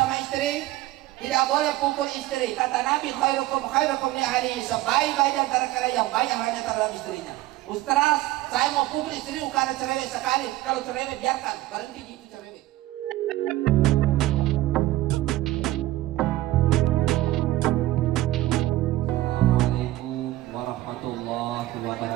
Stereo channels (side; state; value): left; quieter; 16.3 dB